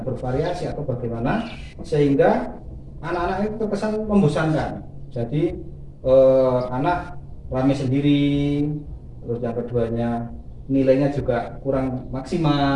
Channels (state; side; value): identical; both; correlation 1.00